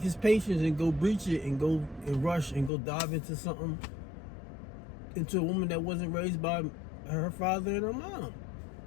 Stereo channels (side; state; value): right; drops out; at 2.7 s